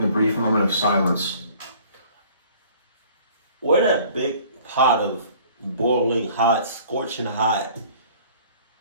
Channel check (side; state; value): both; inverted; correlation -0.52